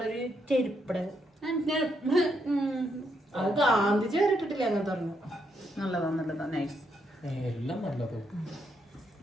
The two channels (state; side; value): normal; both; correlation 0.77